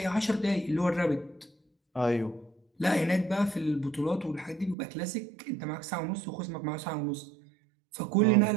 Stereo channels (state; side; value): drops out; left; at 4.8 s